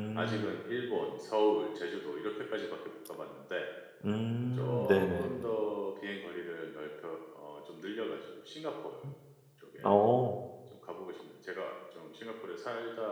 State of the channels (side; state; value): both; identical; correlation 1.00